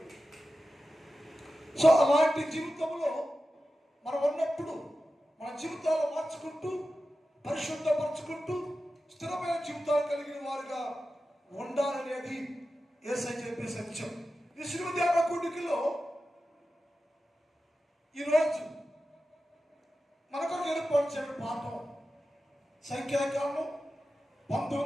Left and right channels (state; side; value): normal; both; correlation 0.93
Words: సో అలాంటి జీవితంలో మనం ఉన్నప్పుడు మన జీవితాలు మార్చుకుంటూ, పరిశుద్ధపరచుకుంటూ, స్థిరమైన జీవితాలు కలిగిన వారుగా ఉండాలనేది యేసయ్య చెప్పే సత్యం. ఈ శిలువ ధ్యాన కూడికలో ఈరోజు మనకు ఏర్పరిచిన పాఠం సంఖ్యాకాండం